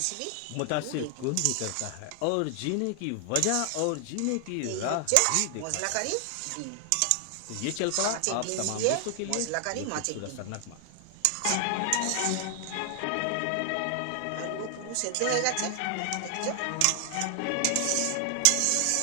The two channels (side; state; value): both; different; correlation 0.00